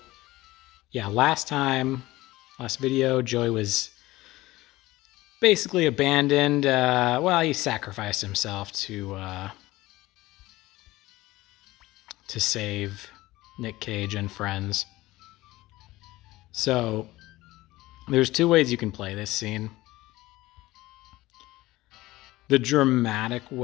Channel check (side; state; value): right; quieter; 18.2 dB